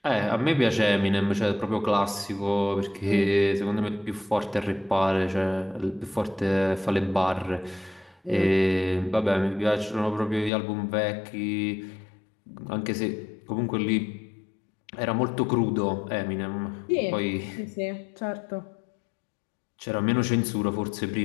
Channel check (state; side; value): drops out; right; at 10.5 s